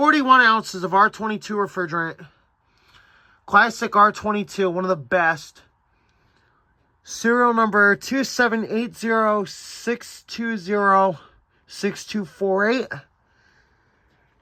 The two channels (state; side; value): identical; both; correlation 1.00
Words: ounces of R22 refrigerant. Classic R22, one of the best. Serial number 2780-620-6248.